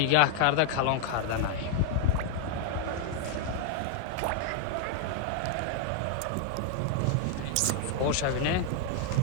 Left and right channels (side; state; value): both; different; correlation 0.00